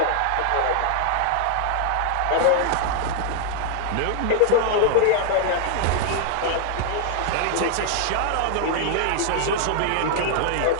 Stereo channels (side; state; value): both; different; correlation 0.00